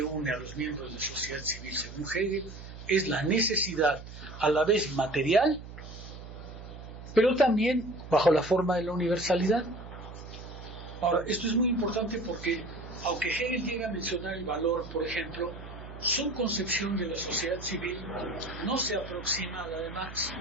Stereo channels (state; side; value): noise; right; hum, 13 dB below the sound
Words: une a los miembros de la sociedad civil, según Hegel, es la necesidad a la vez material, pero también bajo la forma de la universalidad. Ahora, esto es muy importante porque, aunque Hegel llega a mencionar el valor, por ejemplo, su concepción de la sociedad civil no se aproxima a la de Marx.